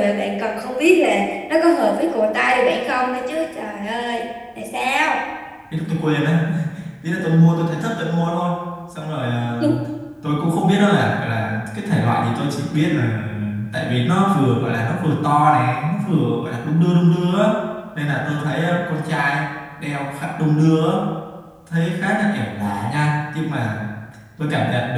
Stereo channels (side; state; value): both; identical; correlation 1.00